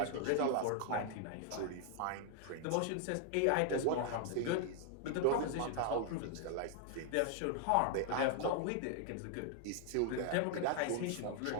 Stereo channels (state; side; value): different; both; correlation 0.00